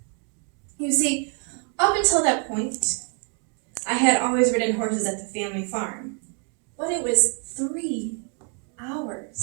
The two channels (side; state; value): left; quieter; 39.9 dB